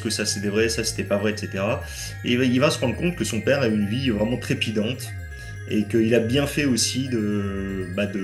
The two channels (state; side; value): identical; both; correlation 1.00